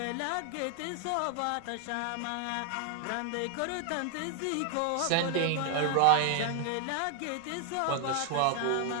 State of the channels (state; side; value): different; both; correlation 0.00